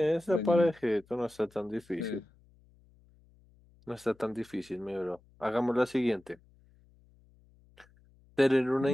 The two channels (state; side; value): noise; left; hum, 30 dB below the sound